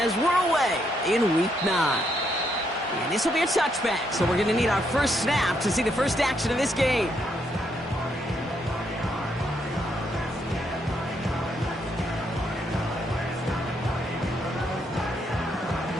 we're away in Week 9. And this will be a touchback, so we're going to need our first snap to see the first action of this game.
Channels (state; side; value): normal; both; correlation 0.76